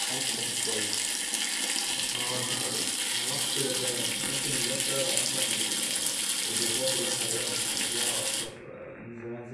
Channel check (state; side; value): identical; both; correlation 1.00